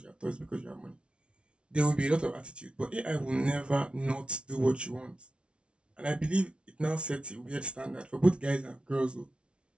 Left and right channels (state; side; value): late; left; 0.059 ms